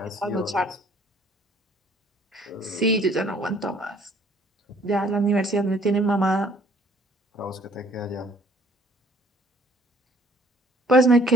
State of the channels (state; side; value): normal; both; correlation 0.58